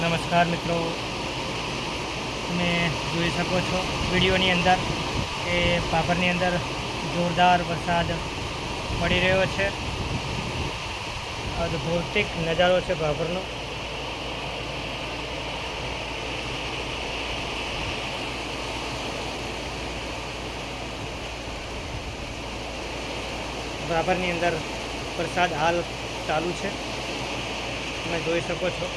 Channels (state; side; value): identical; both; correlation 1.00